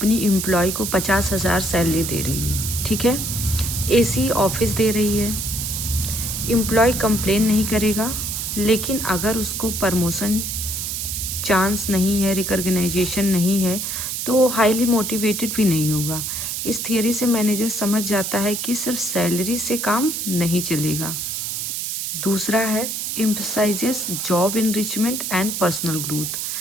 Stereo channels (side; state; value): right; noise; hiss, 3 dB below the sound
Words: एम्प्लॉय को 50,000 सैलरी दे रही है, ठीक है, एसी ऑफिस दे रही है। एम्प्लॉय कंप्लेन नहीं करेगा, लेकिन अगर उसको प्रमोशन चांस नहीं है, रिकॉग्नाइजेशन नहीं है, तो वो हाईली मोटिवेटेड भी नहीं होगा। इस थियरी से मैनेजर समझ जाता है कि सिर्फ सैलरी से काम नहीं चलेगा। दूसरा है emphasises job enrichment and personal growth.